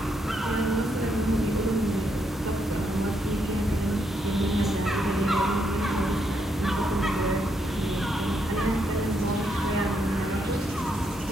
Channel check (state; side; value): normal; both; correlation 0.78